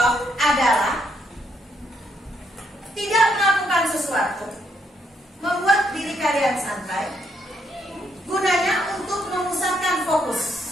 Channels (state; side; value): normal; both; correlation 0.74